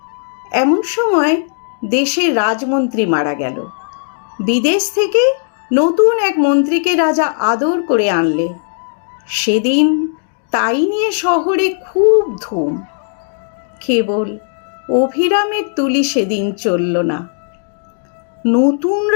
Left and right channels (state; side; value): silent; right; digital silence